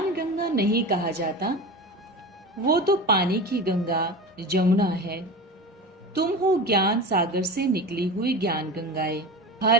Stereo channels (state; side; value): normal; both; correlation 0.29